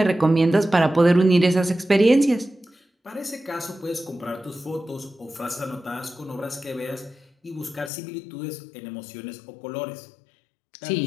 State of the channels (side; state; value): right; drops out; at 7.9 s